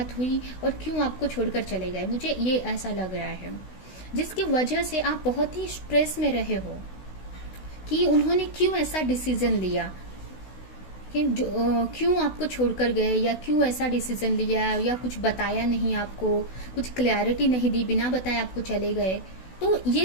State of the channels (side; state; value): right; late; 16 ms